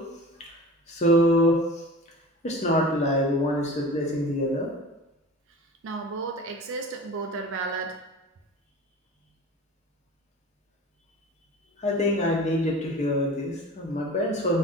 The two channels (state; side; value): normal; both; correlation 0.37